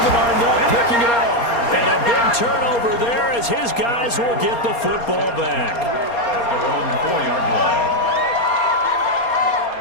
Arnett picking it off. And a big turnover there as his guys will get the football back. At their own 4-yard line.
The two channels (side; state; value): right; late; 4.3 ms